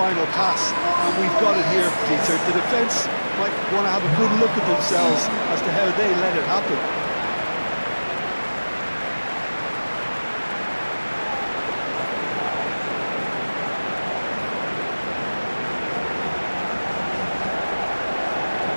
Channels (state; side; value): inverted; both; correlation -1.00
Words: pass, and we've got it here, Peter. The defence might want to have a good look at themselves as to how they let it happen.